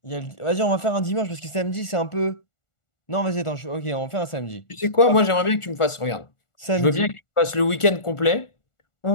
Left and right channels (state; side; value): late; right; 1.4 ms